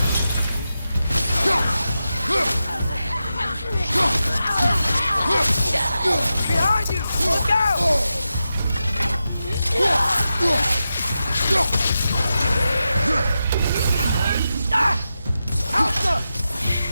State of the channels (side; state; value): both; inverted; correlation -0.90